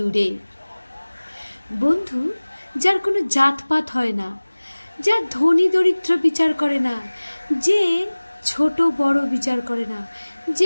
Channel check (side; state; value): both; inverted; correlation -1.00